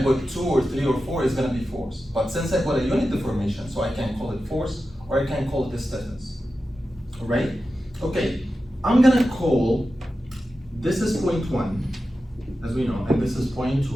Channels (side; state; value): both; normal; correlation 0.92